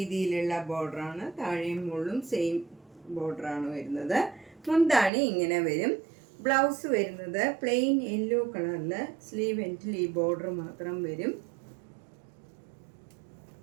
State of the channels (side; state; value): left; drops out; at 5.1 s